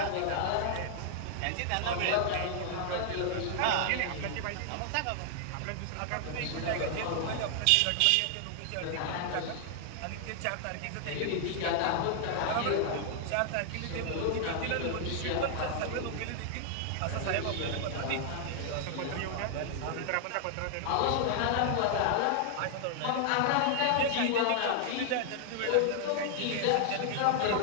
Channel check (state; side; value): different; both; correlation 0.00